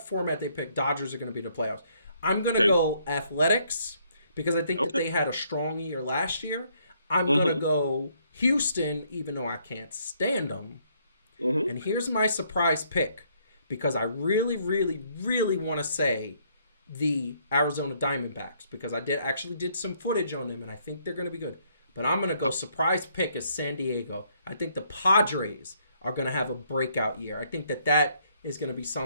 they pick, Dodgers are going to be in the playoffs. I'm going to go Athletics because I think that they had a strong year last year. I'm going to go Houston, even though I can't stand them. And here's my surprise pick because I really, really, really want to say the Arizona Diamondbacks because I did some footage on them and I think they're going to be good. But I'm going to go surprise pick is San Diego. I think the Padres are going to have a breakout year. I think that is going to be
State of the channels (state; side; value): inverted; both; correlation -0.69